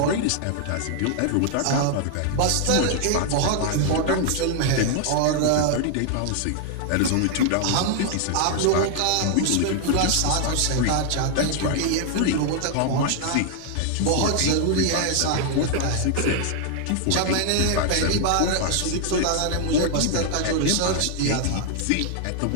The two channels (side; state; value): both; different; correlation 0.00